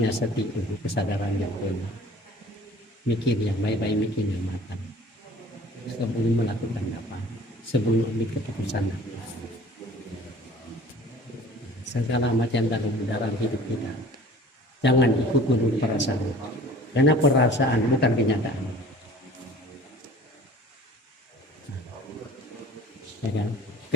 sati, kesadaran yang benar, mikir yang baik-baik, mikir yang matang sebelum melakukan apa, sebelum ambil keputusan apa. Segala macam dalam hidup kita jangan ikut menurut perasaan, karena perasaan bukan kenyataan. Ya kan?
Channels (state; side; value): normal; both; correlation 0.46